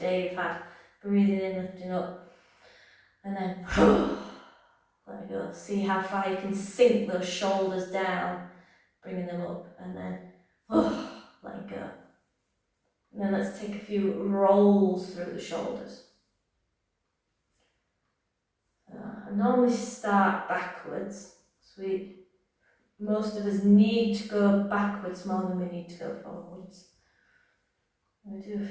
day you've had. Breathing in, lifting up, and then let go. See how far you can sink those shoulders down, bringing them up, and then let go. And then let's take a few rolls through the shoulders. I normally start backwards, so most of us need to go backwards more than we need to go forwards. I'm going to do a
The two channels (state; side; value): identical; both; correlation 1.00